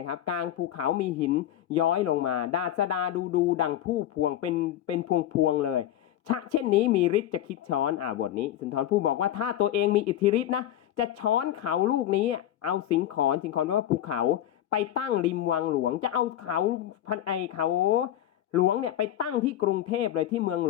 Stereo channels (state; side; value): quieter; right; 12.0 dB